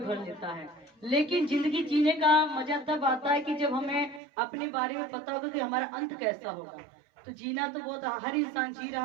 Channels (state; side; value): drops out; left; at 4.2 s